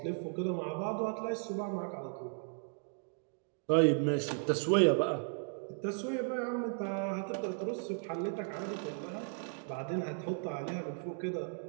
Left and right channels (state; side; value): silent; left; 54 dB below the other